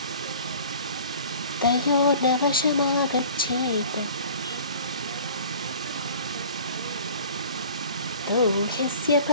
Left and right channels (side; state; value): both; inverted; correlation -0.44